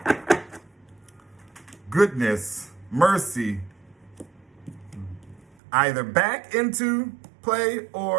goodness, mercy, either back into play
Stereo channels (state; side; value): drops out; left; at 5.5 s